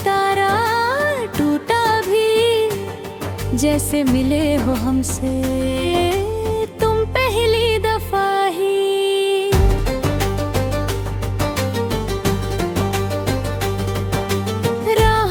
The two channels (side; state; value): both; identical; correlation 1.00